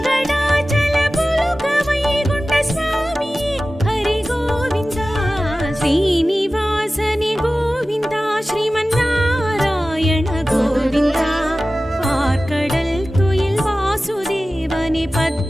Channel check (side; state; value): both; normal; correlation 0.96